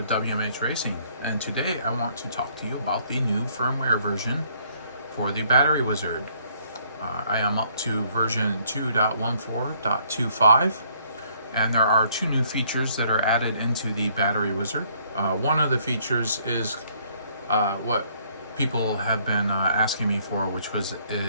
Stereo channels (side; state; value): both; inverted; correlation -0.65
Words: WMH Racing, and today I want to talk to you about the new firmware version for the Battery Wizard. I am up to version 2.14.25, and there are two new features that are added into the Battery Wizard. One of the features is what people have been asking me for, which was